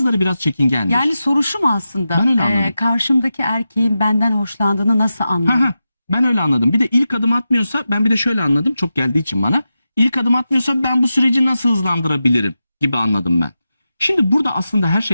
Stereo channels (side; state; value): both; inverted; correlation -0.91